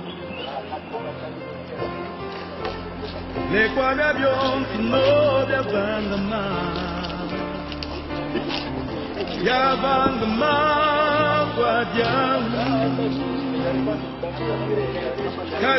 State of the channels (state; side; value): identical; both; correlation 1.00